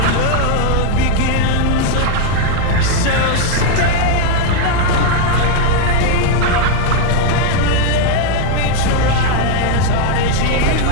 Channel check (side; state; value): both; different; correlation 0.00